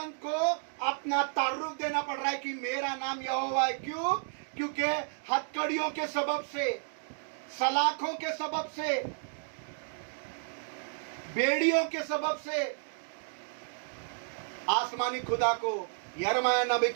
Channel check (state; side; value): silent; left; digital silence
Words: को अपना तारुफ देना पड़ रहा है कि मेरा नाम यहोवा है। क्यों? क्योंकि हथकड़ियों के सबब से, सलाखों के सबब से, बेड़ियों के सबब से आसमानी खुदा को यिर्मयाह नबी